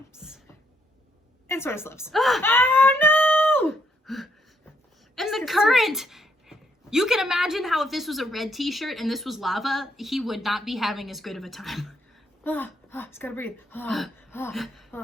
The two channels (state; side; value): normal; both; correlation 0.73